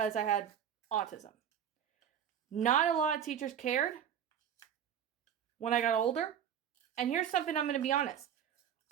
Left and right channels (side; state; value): left; quieter; 9.0 dB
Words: I had autism. Not a lot of teachers cared when I got older. And here's something I'm going to be honest.